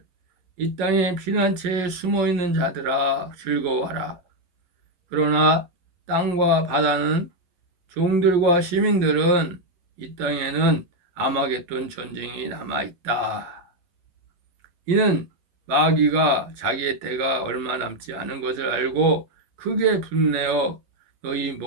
이 땅의 피난처에 숨어있는 자들아 즐거워하라. 그러나 땅과 바다는 종들과 시민들은 이 땅에는 아마겟돈 전쟁이 남아있다. 이는 마귀가 자기의 때가 얼마 남지 않은 것을 알고 크게 분내어 너희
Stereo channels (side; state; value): left; late; 11 ms